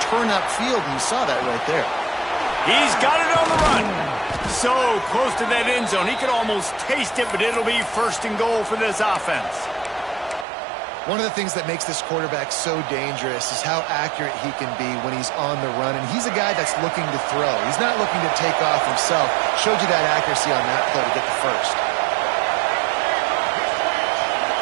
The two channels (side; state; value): left; drops out; at 10.5 s